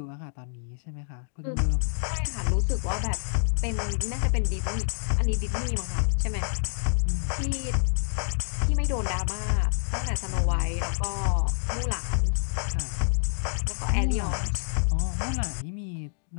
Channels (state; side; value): silent; right; digital silence